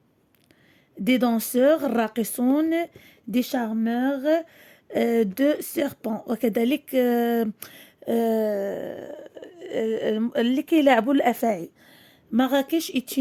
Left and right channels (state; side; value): identical; both; correlation 1.00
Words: des danseurs, الراقصون, des charmeurs, de serpents. وكذلك اللي كيلعبوا الأفاعي. Marrakech est